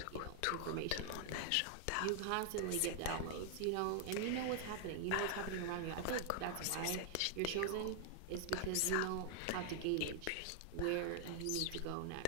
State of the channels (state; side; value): different; both; correlation 0.00